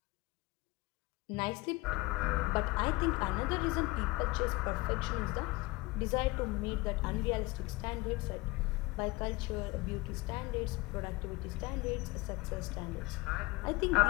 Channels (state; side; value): quieter; right; 21.4 dB